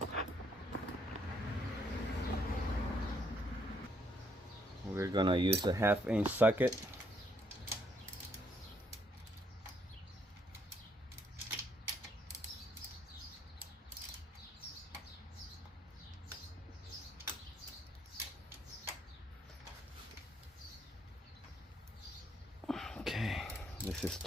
we're gonna use a 1/2-inch socket. Okay, this is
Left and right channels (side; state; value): both; normal; correlation 0.70